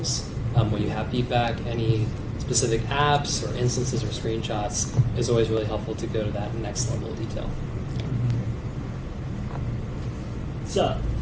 when you have feedback, any specific apps or instances or screenshots, it's always really helpful to go to that next level of detail. So,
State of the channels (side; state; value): both; identical; correlation 1.00